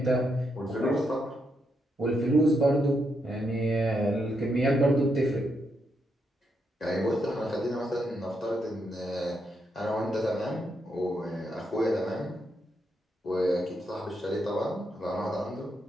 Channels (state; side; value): normal; both; correlation 0.80